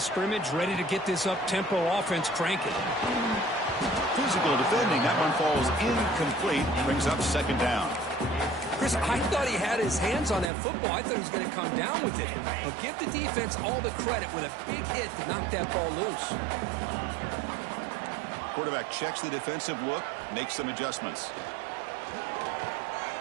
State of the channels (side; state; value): left; drops out; at 10.5 s